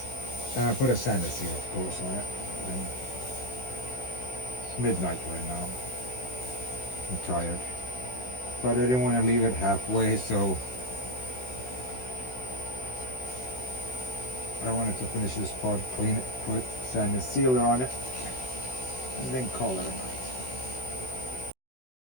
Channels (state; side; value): late; right; 16 ms